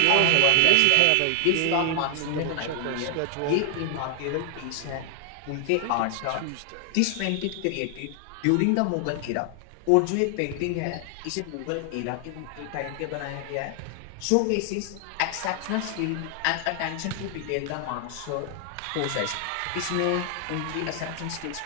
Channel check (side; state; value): both; different; correlation 0.00